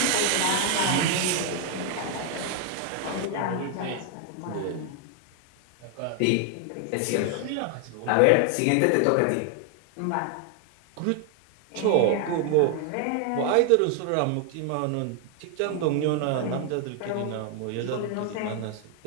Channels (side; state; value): both; different; correlation 0.00